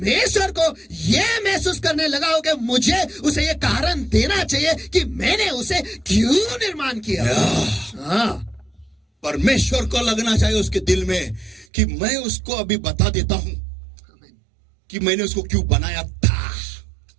को ये महसूस करने लगाऊं कि मुझे उसे ये कारण देना चाहिए कि मैंने उसे क्यों निर्माण किया? हाँ, परमेश्वर को लगना चाहिए उसके दिल में कि मैं उसको अभी बता देता हूं कि मैंने उसको क्यों बनाया था.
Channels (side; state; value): left; drops out; at 11.7 s